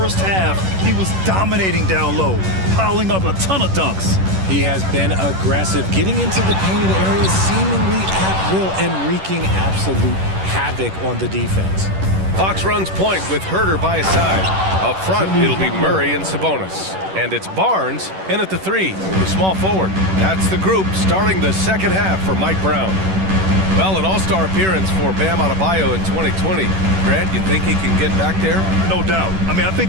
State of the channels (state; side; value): late; left; 11 ms